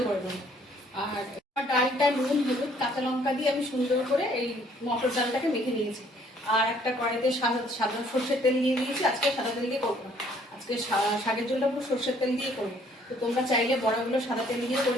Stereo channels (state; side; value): normal; both; correlation 0.62